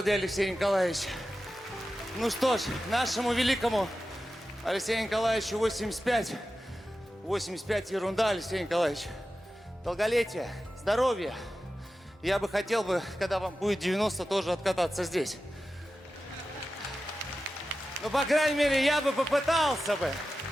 для Алексея Николаевича. Ну что ж, нашему великому Алексею Николаевичу 85. 85 ерунда, Алексей Николаевич. Долголетие, здоровье. Я бы хотел бы, когда вам будет 90, тоже откататься здесь. Ну, по крайней мере, я бы попытался бы.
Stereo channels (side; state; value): both; normal; correlation 0.93